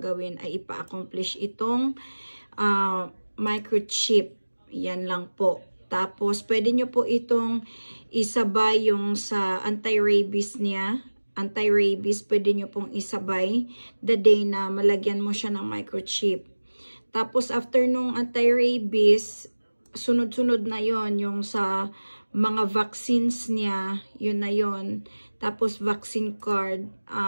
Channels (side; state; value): both; inverted; correlation -1.00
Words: ay ipa-accomplish itong microchip. Yan lang po. Tapos, pwede nyo po itong isabay yung sa anti-rabies niya. Anti-rabies, pwede nyo pong isabay the day na malagyan mo siya ng microchip. Tapos, after nung anti-rabies, sunod-sunod na yon yung sa mga vaccines niya, yun na yon. Tapos, vaccine card,